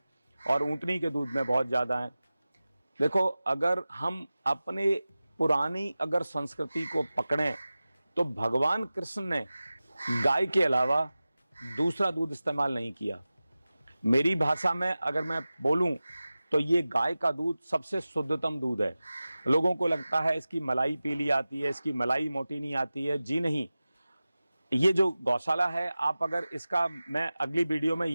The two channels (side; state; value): both; inverted; correlation -0.96